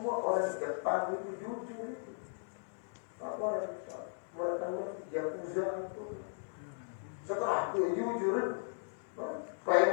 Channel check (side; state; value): right; silent; digital silence